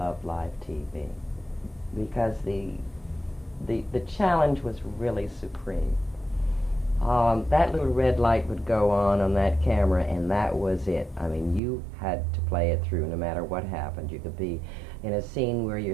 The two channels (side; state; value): left; drops out; at 11.6 s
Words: live TV, because the challenge was really supreme. that little red light would go on that camera, and that was it. I mean, you had to play it through no matter what happened. You could be in a scene where you're